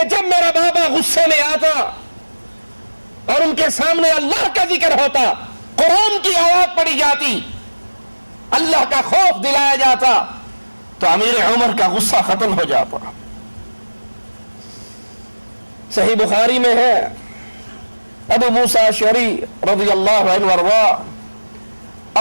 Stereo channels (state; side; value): inverted; both; correlation -1.00